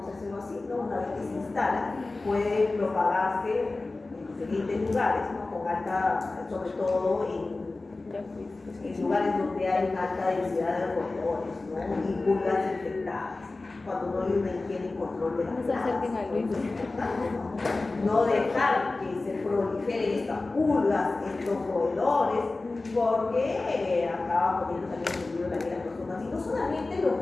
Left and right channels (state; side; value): quieter; right; 3.3 dB